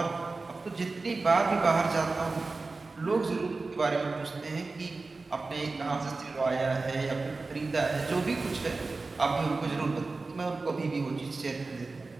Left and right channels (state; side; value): quieter; left; 3.7 dB